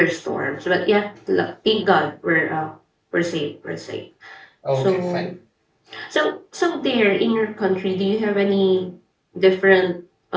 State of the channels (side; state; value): both; identical; correlation 1.00